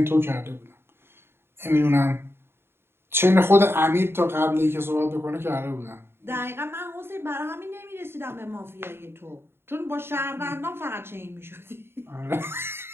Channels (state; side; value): late; left; 0.11 ms